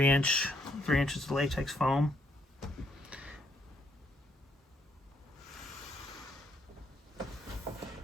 inches of latex foam.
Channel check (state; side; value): normal; both; correlation 0.72